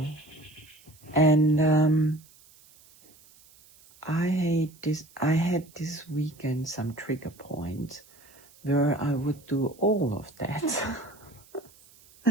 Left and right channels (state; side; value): noise; right; hiss, 26 dB below the sound